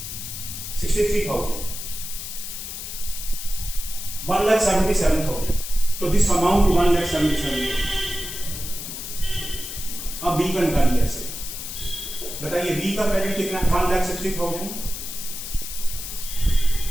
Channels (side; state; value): left; noise; hiss, 8 dB below the sound